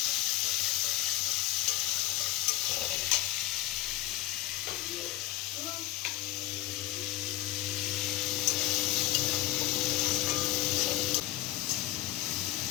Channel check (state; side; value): quieter; right; 16.5 dB